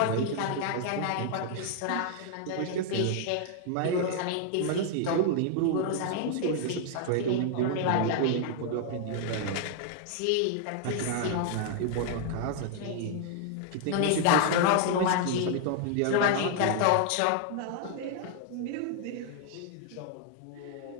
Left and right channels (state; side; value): different; both; correlation 0.00